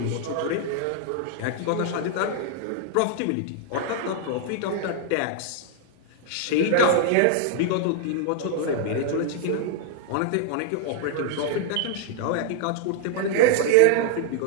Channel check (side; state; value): both; different; correlation 0.00